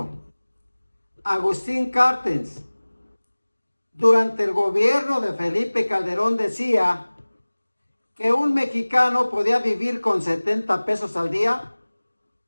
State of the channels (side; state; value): both; inverted; correlation -1.00